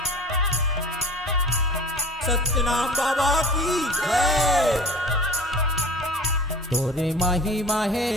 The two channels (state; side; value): normal; both; correlation 0.40